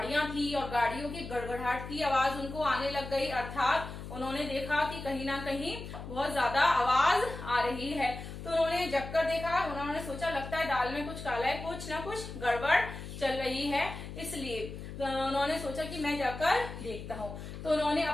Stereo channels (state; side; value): noise; left; hum, 10 dB below the sound